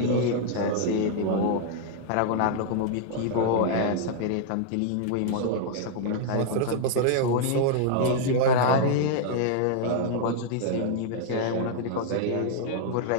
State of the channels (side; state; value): both; different; correlation 0.00